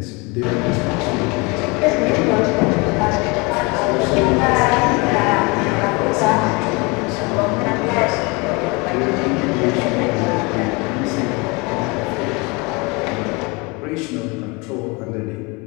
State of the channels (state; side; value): quieter; right; 27.8 dB